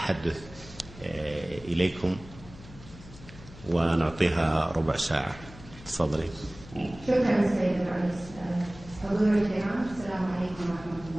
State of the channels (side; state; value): left; noise; hum, 18 dB below the sound